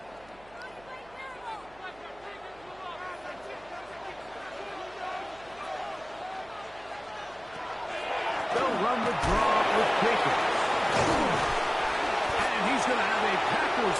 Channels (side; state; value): right; noise; hum, 25 dB below the sound